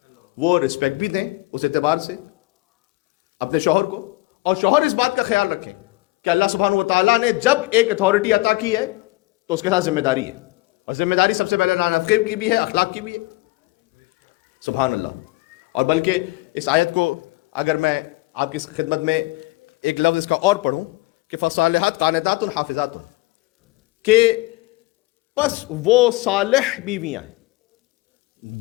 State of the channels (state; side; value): quieter; right; 21.2 dB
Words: وہ رسپیکٹ بھی دیں اس اعتبار سے اپنے شوہر کو، اور شوہر اس بات کا خیال رکھیں کہ اللہ سبحانہ و تعالیٰ نے جب ایک اتھارٹی عطا کی ہے تو اس کے ساتھ ذمہ داری ہے، اور ذمہ داری سب سے پہلے نانفقی کی بھی ہے، اخلاق کی بھی ہے۔ سبحان اللہ۔ اور بلکہ اس آیت کو اگر میں آپ کی خدمت میں ایک لفظ اس کا اور پڑھوں کہ فصالحات قانتات حافظات، کہ پس وہ صالح بیویاں ہیں